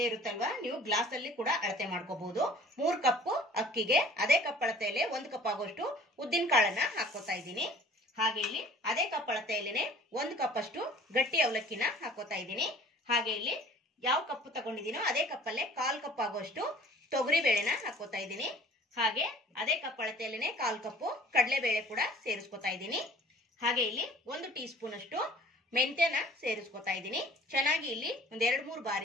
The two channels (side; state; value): both; normal; correlation 0.50